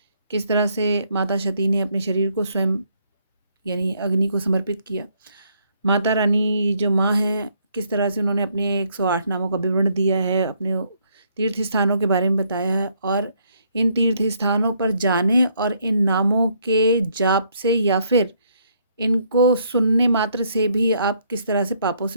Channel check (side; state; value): both; inverted; correlation -0.70